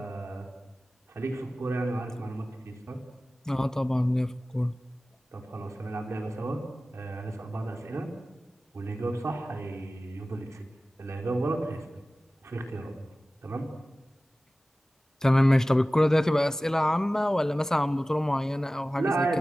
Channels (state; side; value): normal; both; correlation 0.96